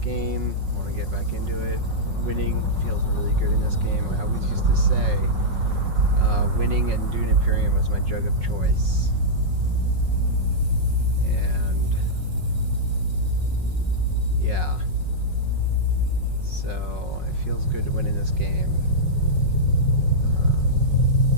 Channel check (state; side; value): late; left; 5.4 ms